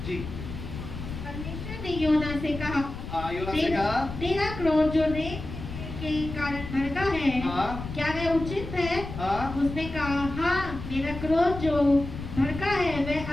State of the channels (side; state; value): left; noise; rumble, 9 dB below the sound